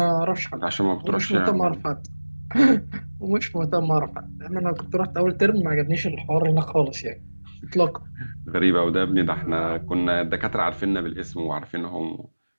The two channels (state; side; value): inverted; both; correlation -1.00